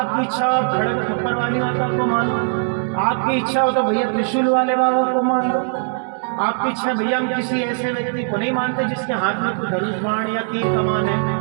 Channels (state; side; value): silent; left; 63 dB below the other